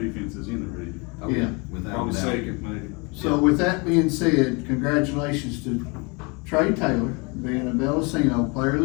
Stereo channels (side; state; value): right; quieter; 29.9 dB